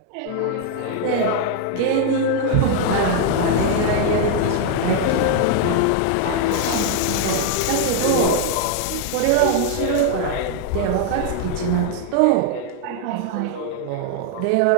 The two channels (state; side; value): different; both; correlation 0.00